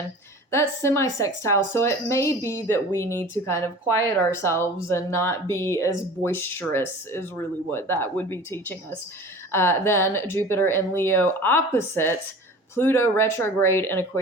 That's semi-sextile, so it may be that we need to kind of quiet ourselves and not be as boisterous, is really what that would be teaching us. Then Jupiter in Leo opposite Pluto retrograde in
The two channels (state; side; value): normal; both; correlation 0.40